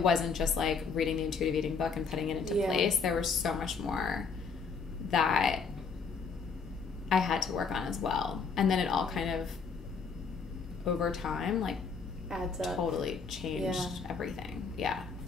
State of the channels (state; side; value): quieter; right; 5.2 dB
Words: just like reading the intuitive eating book and putting it into place. There was so much more that I had to work on as well. And then it all kind of, over time, like, adds up. Totally changed everything. Yeah.